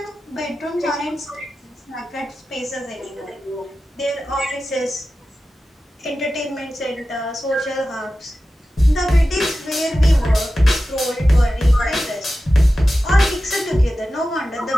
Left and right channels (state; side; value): normal; both; correlation 0.94